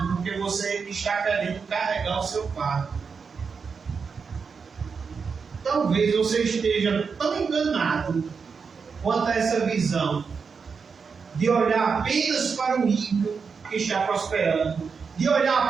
porque você está querendo carregar o seu fardo. Talvez você esteja tão enganado quanto a essa visão de olhar apenas para o ímpio que está prosperando, de olhar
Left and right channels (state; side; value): quieter; left; 5.5 dB